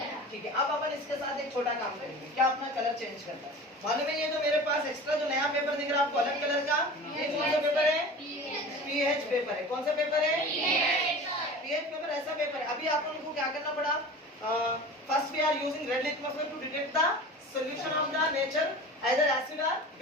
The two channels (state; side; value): normal; both; correlation 0.36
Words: ठीक है, अब अपन इसके साथ एक छोटा काम करेंगे, क्या अपना कलर चेंज करता है मालूम है? ये जो मेरे पास एक्स्ट्रा जो नया पेपर दिख रहा है आपको अलग कलर का, ये कौन सा पेपर है? पीएच पेपर है। कौन सा पेपर है? PH paper. ऐसा पेपर है। अभी आप लोगों को क्या करना पड़ा? First we are using red litmus paper to detect the solution of the nature either acid or